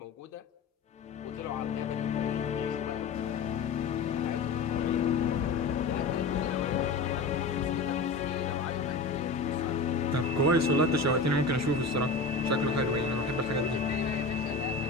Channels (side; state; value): right; quieter; 3.8 dB